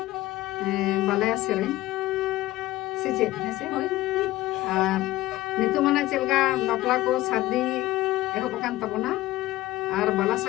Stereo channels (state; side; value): quieter; right; 16.8 dB